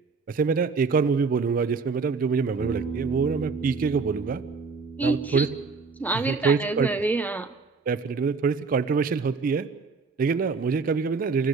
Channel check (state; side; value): quieter; left; 4.7 dB